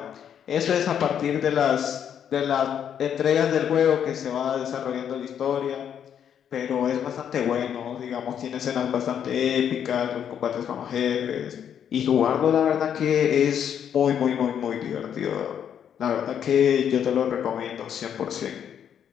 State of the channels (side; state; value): right; quieter; 8.8 dB